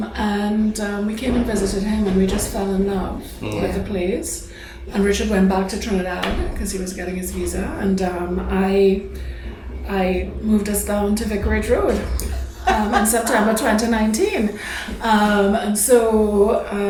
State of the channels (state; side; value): identical; both; correlation 1.00